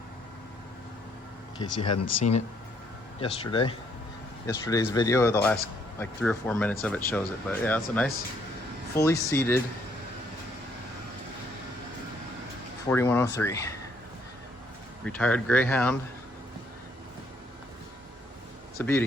case you hadn't seen it yesterday. Yesterday's video, the last like 3 or 4 minutes of it shows it. But yeah, it's a nice, fully seated 4103. Retired Greyhound. It's a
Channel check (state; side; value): normal; both; correlation 0.68